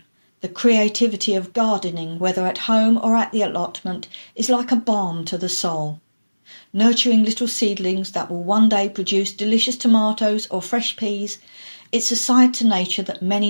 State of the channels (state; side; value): inverted; both; correlation -1.00